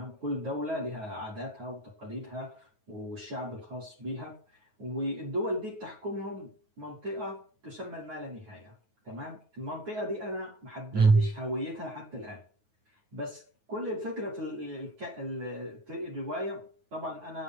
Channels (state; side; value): late; left; 9.3 ms